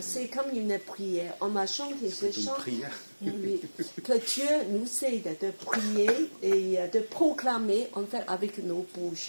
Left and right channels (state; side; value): inverted; both; correlation -1.00